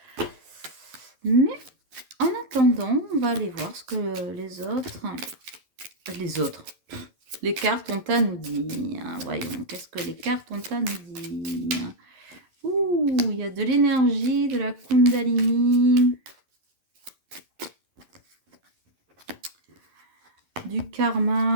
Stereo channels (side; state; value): left; late; 11 ms